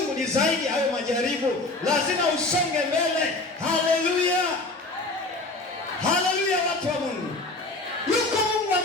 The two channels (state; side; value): quieter; right; 3.1 dB